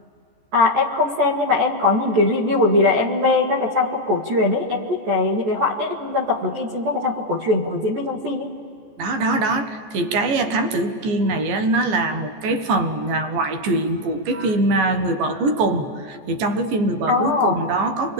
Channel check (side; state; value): left; late; 14 ms